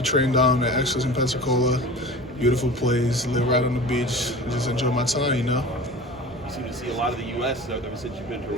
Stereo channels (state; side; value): normal; both; correlation 0.36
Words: train down at Extras in Pensacola. Beautiful place. Live right on the beach. Just enjoy my time. You seem to see a lot of the U.S. ever since you've been to